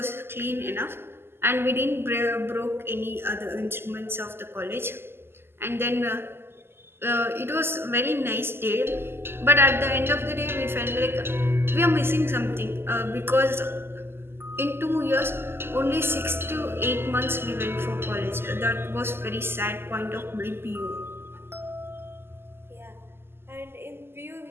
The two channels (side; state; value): left; late; 0.11 ms